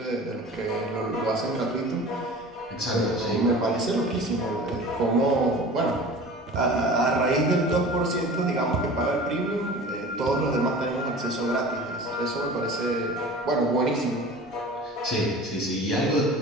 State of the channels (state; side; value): normal; both; correlation 0.39